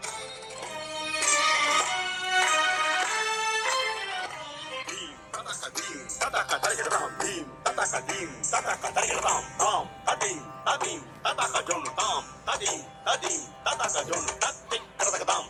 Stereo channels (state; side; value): identical; both; correlation 1.00